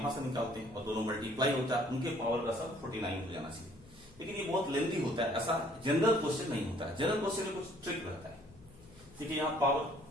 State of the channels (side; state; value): left; noise; hum, 24 dB below the sound